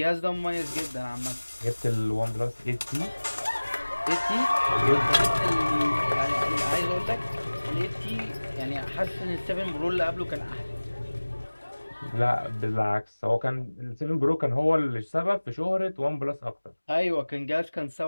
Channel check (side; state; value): both; inverted; correlation -1.00